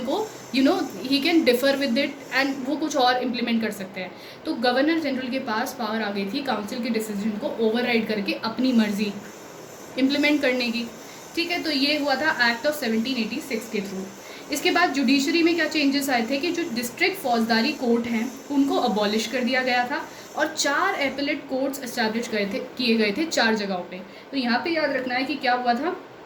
को he can differ with it and वो कुछ और इम्प्लीमेंट कर सकते हैं। तो गवर्नर जनरल के पास पावर आ गई थी काउंसिल के डिसीजन को ओवरराइड करके अपनी मर्जी इम्प्लीमेंट करने की, ठीक है। तो ये हुआ था एक्ट ऑफ 1786 के थ्रू। इसके बाद जुडिशरी में क्या चेंजेस आए थे कि जो डिस्ट्रिक्ट फौजदारी कोर्ट हैं उनको अबॉलिश कर दिया गया था और 4 एपेलेट कोर्ट्स एस्टैब्लिश किए गए थे 4 जगहों पे। तो यहाँ पे याद रखना है कि क्या हुआ था,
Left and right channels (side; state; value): both; identical; correlation 1.00